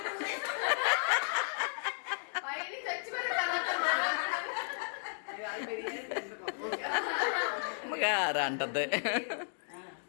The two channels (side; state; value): right; silent; digital silence